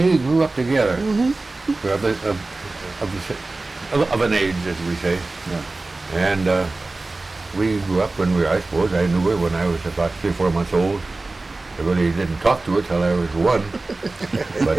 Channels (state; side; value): quieter; left; 3.3 dB